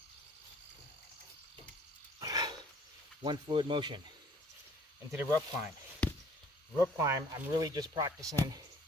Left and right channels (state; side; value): normal; both; correlation 0.56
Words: One fluid motion into the rope climb. Rope climb, I'm really just practicing